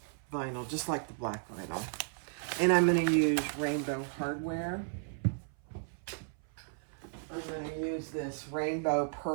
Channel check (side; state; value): left; silent; 55 dB below the other